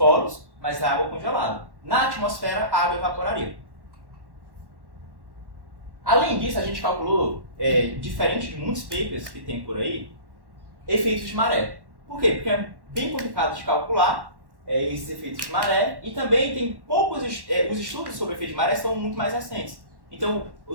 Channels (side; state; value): left; late; 1.1 ms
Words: mas é água congelada. Na atmosfera, a água evaporaria. Além disso, a gente calculou, diferente de muitos papers que tem por aí, efeitos de maré. Por quê? Porque é bem complicado de calcular esses efeitos de maré, e também tem poucos os estudos sobre efeito de maré são muito mais recentes. Então,